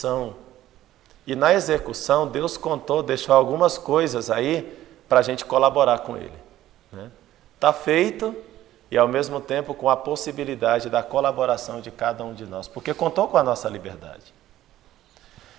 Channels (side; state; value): left; quieter; 13.8 dB